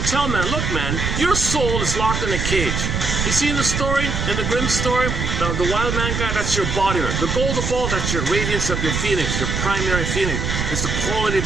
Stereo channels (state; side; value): noise; right; rumble, 2 dB below the sound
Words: tell man, look man, your soul is locked in a cage. You see in the story, in the Grimm story, the wild man guy, that's your embodiment. The golden ball, that's your radiance of your feelings, your primary feeling. It's the quality